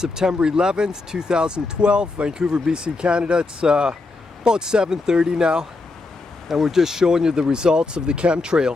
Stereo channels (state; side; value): quieter; right; 3.5 dB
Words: 11th, 2012, Vancouver, BC, Canada. It's about 7:30 now, and we're just showing you the results of the